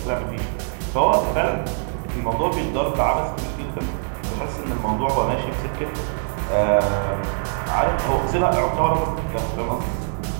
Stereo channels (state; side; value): silent; left; digital silence